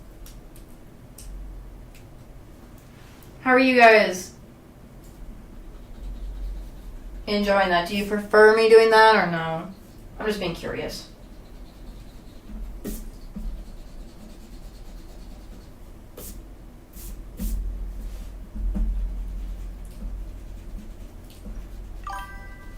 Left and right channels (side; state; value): both; identical; correlation 1.00